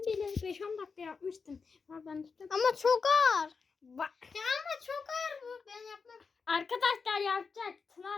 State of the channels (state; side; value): quieter; right; 5.1 dB